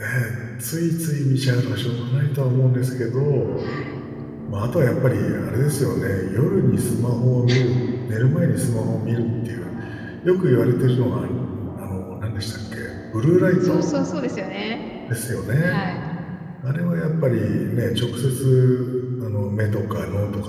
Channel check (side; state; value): both; identical; correlation 1.00